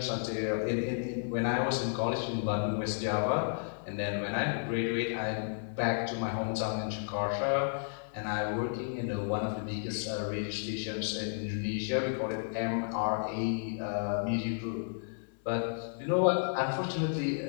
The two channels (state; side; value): silent; right; digital silence